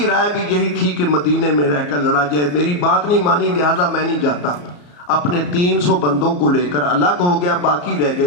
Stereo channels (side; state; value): right; late; 34 ms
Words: رائے بھی یہی تھی کہ مدینے میں رہ کر لڑا جائے، میری بات نہیں مانی لہذا میں نہیں جاتا۔ اپنے 300 بندوں کو لے کر الگ ہو گیا، باقی رہ